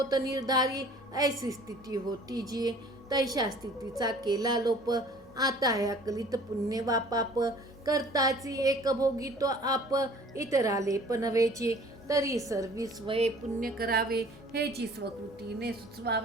निर्धारी ऐसी स्थिती होती जी. तैशा स्थितीचा केला लोप. आता ह्या कलित पुण्य वा पाप करताची एक भोगी तो आप. इतराले पनवेची तरी सर्वी स्वये पुण्य करावे. हेची स्वकृतीने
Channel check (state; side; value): normal; both; correlation 0.51